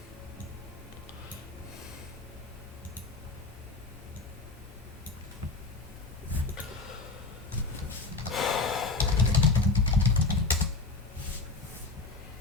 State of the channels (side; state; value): right; quieter; 3.8 dB